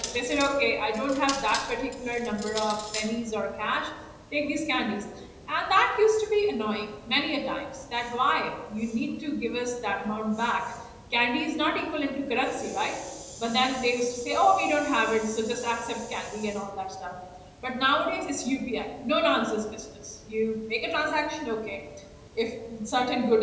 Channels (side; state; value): both; identical; correlation 1.00